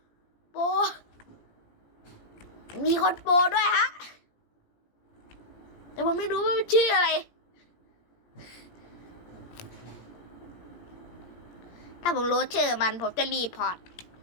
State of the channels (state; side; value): late; right; 17 ms